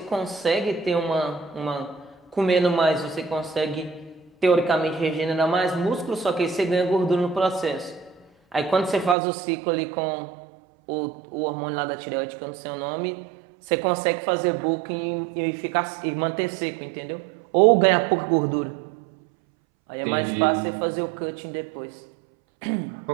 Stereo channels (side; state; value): left; drops out; at 9.2 s